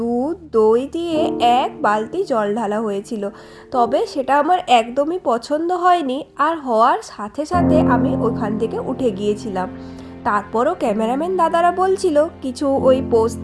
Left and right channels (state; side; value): identical; both; correlation 1.00